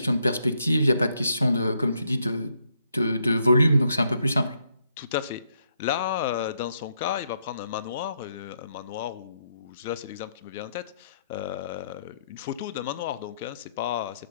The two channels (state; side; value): inverted; both; correlation -0.75